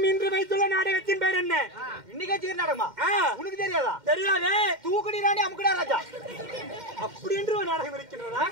இன்று வைத்துள்ள நாடகத்தின் பேர் என்ன இன்னைக்கு வச்சுக்கிற நாடகமா உனக்கு தெரியாதா தெரியாதே தூக்குடி ராணி அமுக்குடா ராஜா அப்படி என்று ஒரு நாடகம் இருக்கின்றதா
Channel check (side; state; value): left; late; 2.1 ms